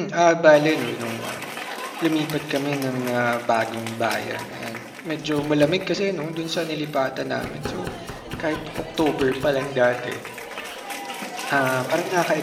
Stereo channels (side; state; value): both; identical; correlation 1.00